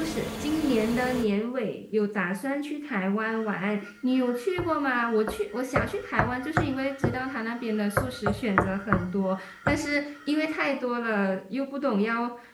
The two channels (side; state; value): both; identical; correlation 1.00